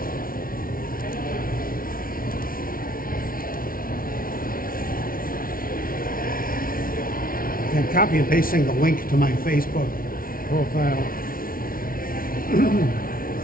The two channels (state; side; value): late; right; 0.42 ms